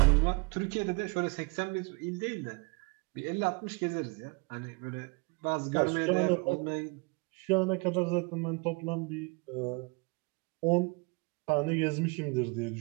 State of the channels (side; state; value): left; quieter; 29.0 dB